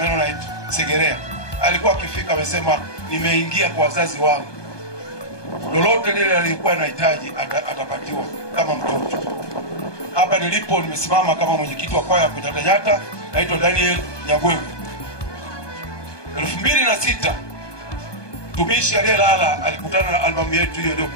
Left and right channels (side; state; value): right; late; 1.2 ms